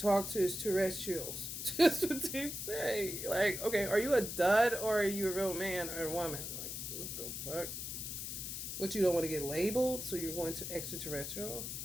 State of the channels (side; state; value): left; noise; hiss, 6 dB below the sound